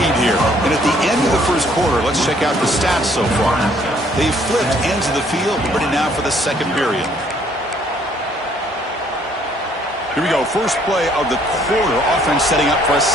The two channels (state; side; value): normal; both; correlation 0.63